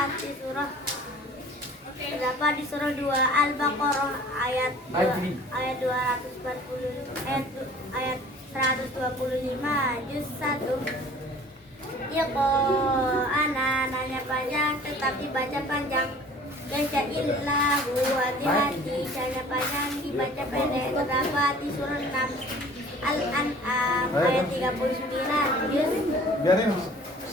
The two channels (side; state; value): both; normal; correlation 0.48